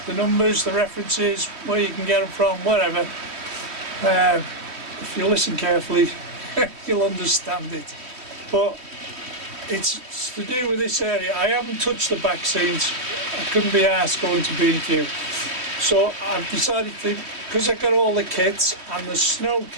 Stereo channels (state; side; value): late; left; 3.1 ms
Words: the numbers, the references, where you can get them from, whatever. If you listen carefully, you'll understand it. But it's to do with this area. I haven't touched the back scenes. I couldn't be asked going to B&Q. So I've decided to, because I got all the kits and the snow